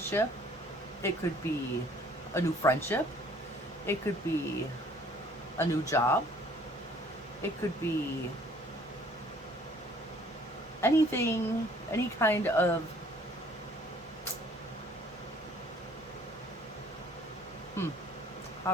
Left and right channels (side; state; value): both; normal; correlation 0.57